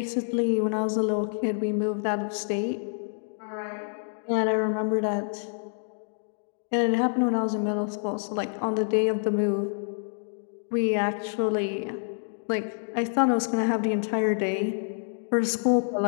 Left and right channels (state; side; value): silent; right; digital silence